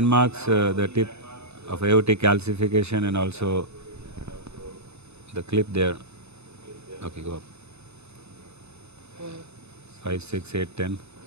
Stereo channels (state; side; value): late; left; 0.80 ms